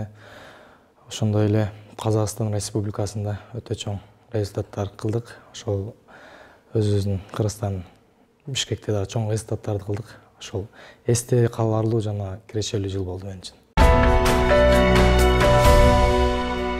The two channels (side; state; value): both; identical; correlation 1.00